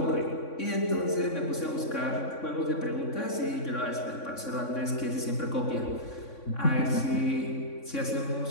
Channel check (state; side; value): late; right; 3.6 ms